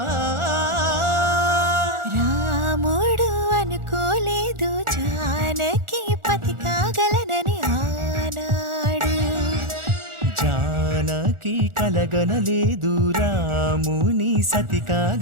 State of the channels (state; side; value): late; left; 1.4 ms